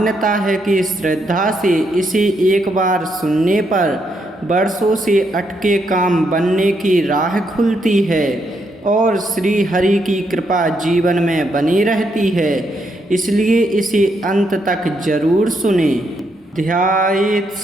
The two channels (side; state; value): both; normal; correlation 0.78